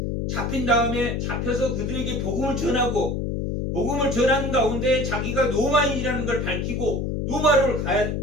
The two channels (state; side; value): noise; left; hum, 1 dB below the sound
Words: 그들에게 복음을 전하고 복음을 전하는 가운데 자기가 로마인이라는 걸 밝히고 로마를 가야